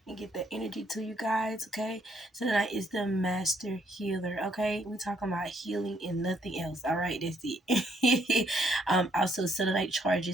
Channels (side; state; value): both; normal; correlation 0.70